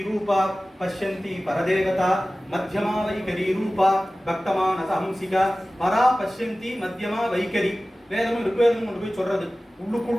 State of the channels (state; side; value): normal; both; correlation 0.97